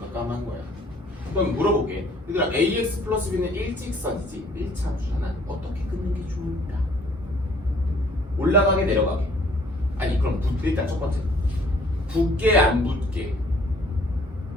까만 거야. 그럼 물어볼게. 얘들아 ax 플러스 b는 일직선이지 1차 함수잖아. 어떻게 끊는 게 좋을까? 올라가게 내려가게? 아니 그럼 일단 첫 번째 붙게 안 붙게?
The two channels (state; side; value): normal; both; correlation 0.59